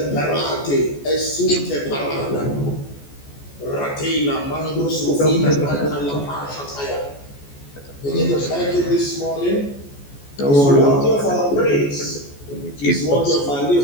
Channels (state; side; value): late; right; 14 ms